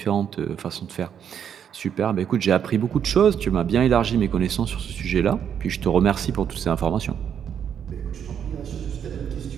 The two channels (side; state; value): left; quieter; 8.5 dB